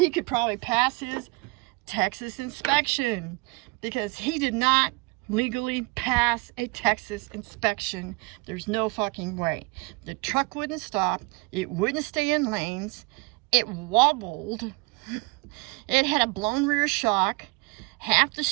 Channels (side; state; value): left; quieter; 26.4 dB